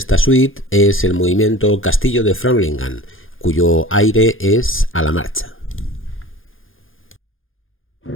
suite es el movimiento Castillo de Framlingham, cuyo aire es a la marcha.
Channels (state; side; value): late; right; 0.59 ms